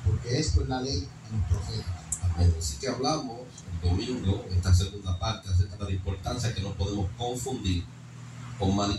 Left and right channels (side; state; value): both; identical; correlation 1.00